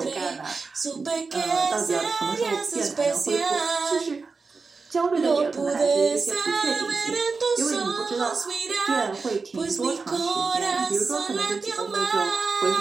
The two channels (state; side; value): quieter; left; 4.4 dB